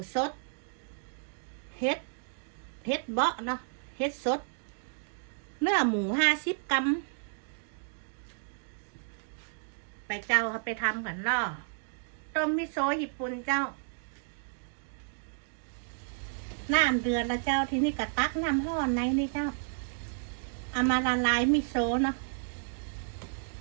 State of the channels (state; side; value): silent; left; digital silence